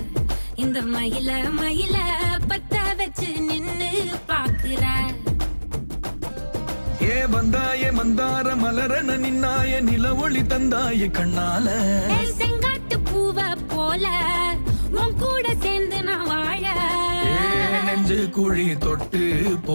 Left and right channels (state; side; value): inverted; both; correlation -1.00